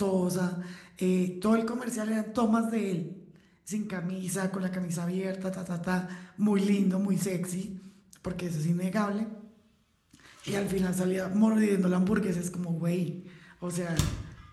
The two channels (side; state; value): both; identical; correlation 1.00